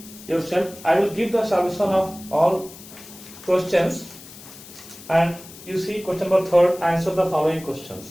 yourself. I will give the solution of all questions, and you see question number 3, answer the following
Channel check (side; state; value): left; noise; hiss, 18 dB below the sound